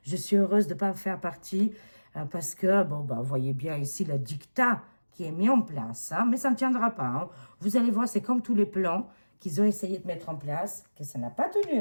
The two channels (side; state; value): both; inverted; correlation -1.00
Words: Je suis heureuse de ne pas faire partie parce que, bon, bah, vous voyez bien ici le dictat qui est mis en place, hein, mais ça ne tiendra pas. Hein. Vous allez voir, c'est comme tous les plans qu'ils ont essayé de mettre en place, que ça n'a pas